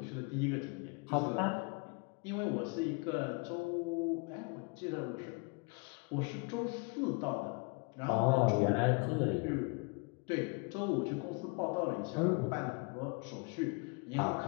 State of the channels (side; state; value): right; quieter; 32.2 dB